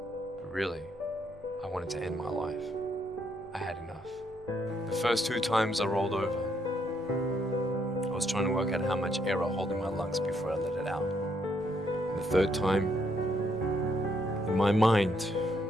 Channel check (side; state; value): both; normal; correlation 0.73